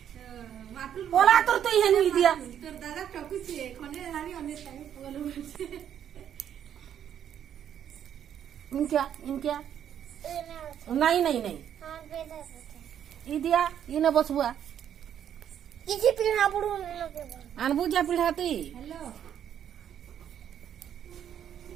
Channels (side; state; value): left; quieter; 9.6 dB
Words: बोला तो ये नहीं दिया তোর দাদা টকুছে কোনে আমি অনেক টাইম বলে বলছে इनक्या नहीं नहीं नहीं ई दिया इने बसबुआ किसी पिढ़ा बुढ़ू लगे अनबुजा पिढ़ाती हेलो